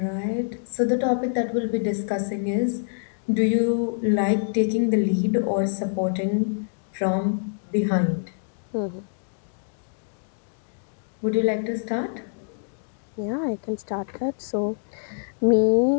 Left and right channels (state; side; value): silent; right; digital silence